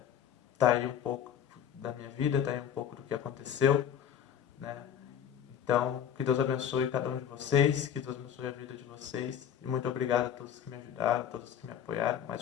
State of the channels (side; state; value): right; quieter; 8.9 dB